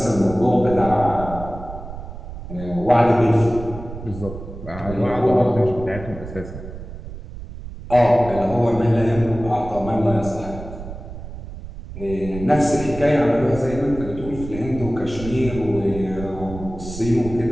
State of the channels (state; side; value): noise; right; rumble, 11 dB below the sound